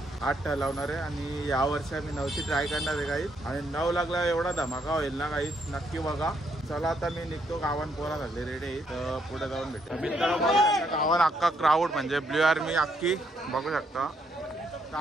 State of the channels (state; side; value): normal; both; correlation 0.73